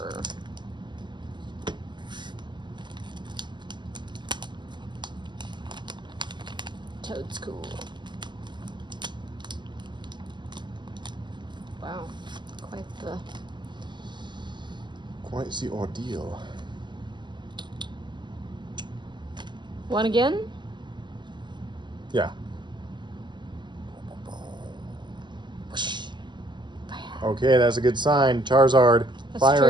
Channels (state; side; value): late; left; 0.22 ms